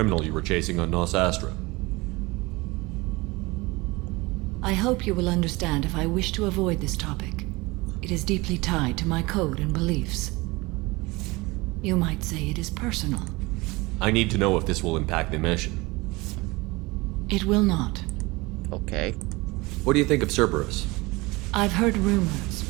you were chasing on Nos Astra. I hope you will understand if I wish to avoid this topic. It is deeply tied to my code and beliefs. You might say it is personal. I need to know if this will impact the mission. It will not. Okay. What do you think of Cerberus? I've heard rumors,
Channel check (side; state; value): left; quieter; 23.2 dB